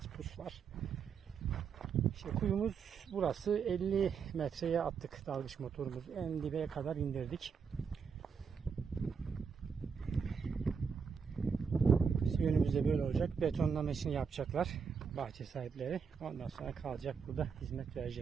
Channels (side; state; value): left; quieter; 6.1 dB